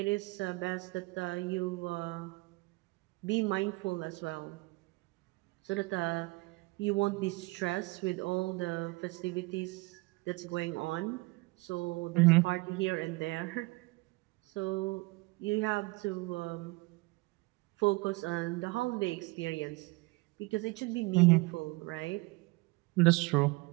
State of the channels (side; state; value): left; quieter; 24.4 dB